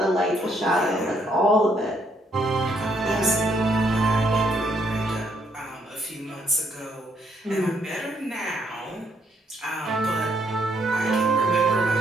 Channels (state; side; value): normal; both; correlation 0.72